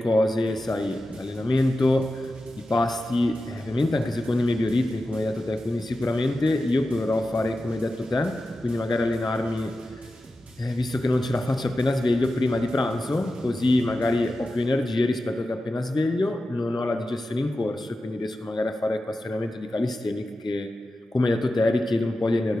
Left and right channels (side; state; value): both; normal; correlation 0.92